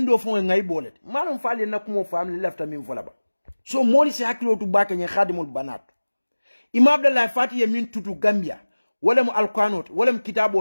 fo ngai bolete malum fali na ko mo family lefta min fola ba so moli se hakilo tu bake nye khadimul banat imam Abdoulaye Fati ye min tutu Gambia wala mu alqanot wala mu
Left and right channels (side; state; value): both; inverted; correlation -1.00